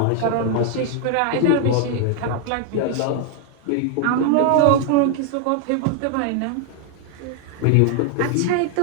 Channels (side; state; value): both; different; correlation 0.00